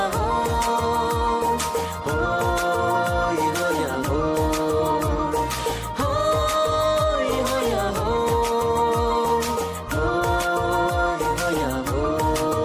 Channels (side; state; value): both; identical; correlation 1.00